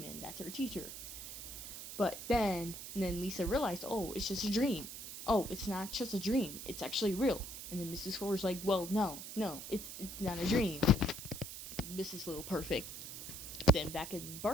That's her teacher. And then Lisa realized, oh, it's just a dream. Oh, it's not just a dream. It's actually real. And then Mrs. Hoover's like, well, no, it's not a dream. Mrs. Little Perfect. Then back in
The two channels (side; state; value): right; noise; hiss, 9 dB below the sound